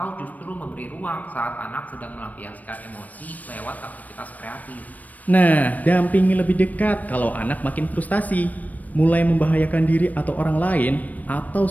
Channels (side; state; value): right; late; 0.076 ms